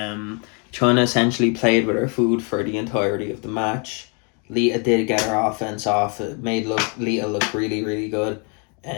essentially played with her food for the entirety of the match. Lita did get her offense off. It made Lita look really, really good.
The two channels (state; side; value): quieter; right; 36.3 dB